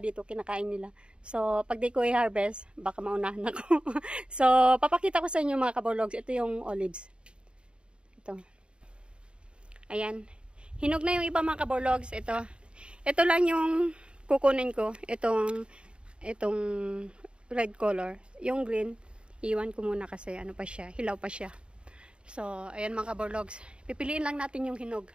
kinakain nila. So, pag di ko i-harvest, baka maunahan ako. So, papakita ko sa inyo mga kaborlogs. Ito yung olives. Ito. Ayan. Hinog na yung iba mga kaborlogs. Ito. Ito lang yung kukunin ko. Itong red color. Yung green, iwan ko muna kasi pa siya, hilaw pa siya. So, ayan mga kaborlogs. Pipiliin lang natin yung hinog.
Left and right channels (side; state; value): left; late; 0.054 ms